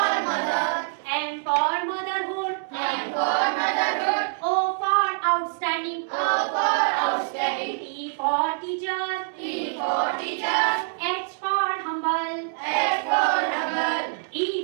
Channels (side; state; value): left; silent; 62 dB below the other